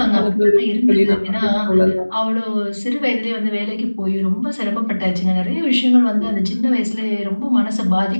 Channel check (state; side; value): inverted; both; correlation -1.00